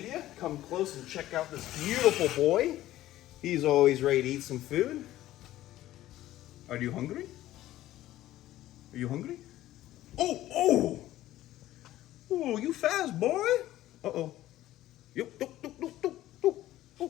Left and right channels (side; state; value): right; quieter; 14.6 dB